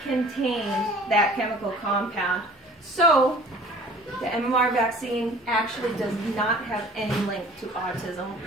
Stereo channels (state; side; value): normal; both; correlation 0.49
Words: contained that chemical compound. So the MMR vaccine actually does not have any link to autism